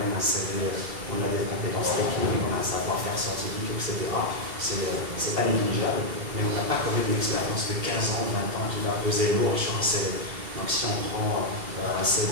un CV, on a des compétences techniques, on a un savoir-faire scientifique, etc. C'est pas négligeable, mais on n'a pas quand même l'expérience de 15 ans, 20 ans qui va peser lourd sur un CV. Donc si on prend un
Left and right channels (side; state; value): left; late; 2.7 ms